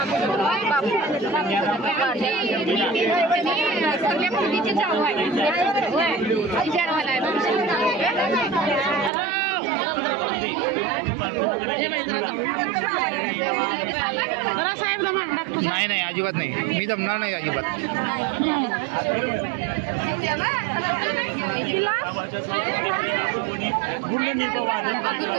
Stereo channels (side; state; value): left; drops out; at 9.1 s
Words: नाही नाही अजिबात नाही मी जमणार नाही अजिबात.